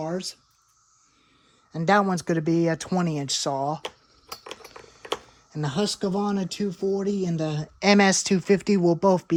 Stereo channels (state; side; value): identical; both; correlation 1.00